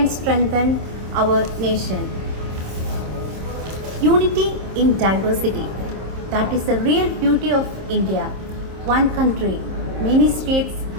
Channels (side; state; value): left; late; 26 ms